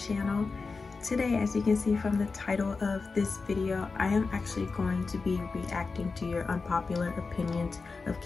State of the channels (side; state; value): right; quieter; 4.3 dB